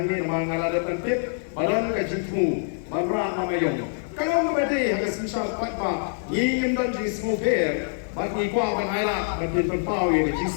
mengalami tentip, badan kecilmu, barang mamayong. Kalau memberi harga semisal patpa, ingin dan jenis mobil, bagi kuah banailah, bagi tempau yang jenis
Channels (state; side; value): silent; right; digital silence